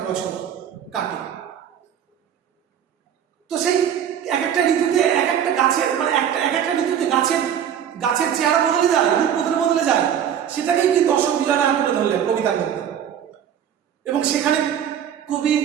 বছর কাটে। তো সেই এক একটা ঋতুতে এক একটা গাছের মানে এক একটা ঋতুতে গাছের চেহারা বদলে যায়, রূপ বদলে যায়, সেটাকেই কিন্তু অশোক বিজয় রাহা তুলে ধরলেন কবিতার মধ্যে। এবং সেখানে কবির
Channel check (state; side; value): quieter; left; 9.2 dB